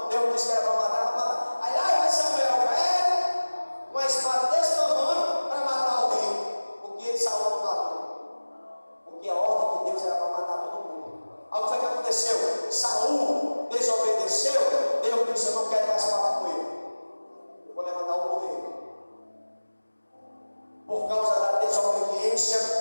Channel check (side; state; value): both; inverted; correlation -1.00